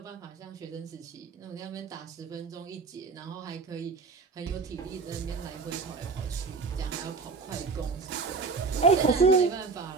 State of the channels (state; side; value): quieter; left; 4.6 dB